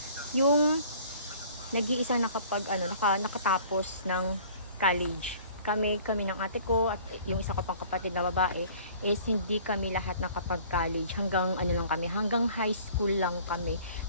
yung nag-iisang nakatapos ng college. Kami ng ate ko at yung isa ko pang kapatid na babae is hindi kami lahat nakapag-college. Hanggang hanggang high school lang kami.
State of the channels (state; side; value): inverted; both; correlation -0.50